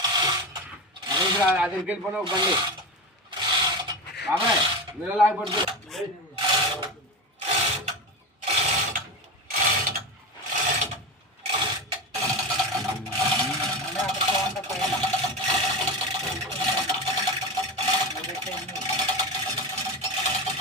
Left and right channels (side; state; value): both; normal; correlation 0.21